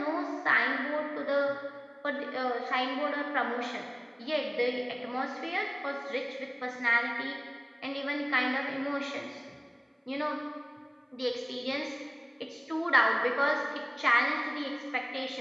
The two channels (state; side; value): identical; both; correlation 1.00